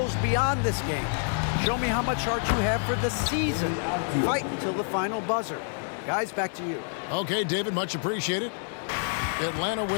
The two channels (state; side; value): silent; right; 55 dB below the other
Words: beyond this game. Show me how much heart you have for the season. Fight until the final buzzer. Guys, back to you. Okay, David, much appreciated. Atlanta